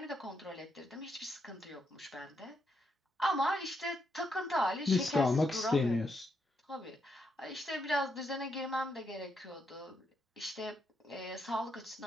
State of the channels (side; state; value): both; normal; correlation 0.79